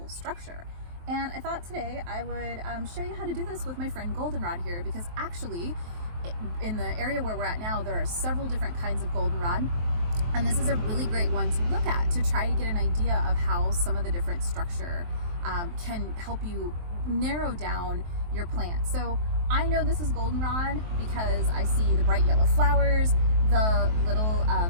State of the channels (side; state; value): left; late; 23 ms